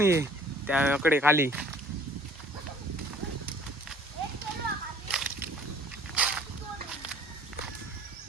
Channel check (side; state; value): both; normal; correlation 0.54